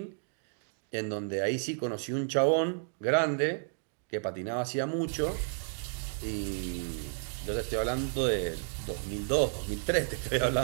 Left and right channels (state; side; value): silent; left; digital silence